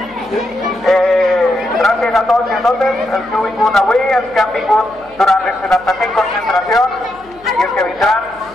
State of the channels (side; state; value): left; noise; hum, 27 dB below the sound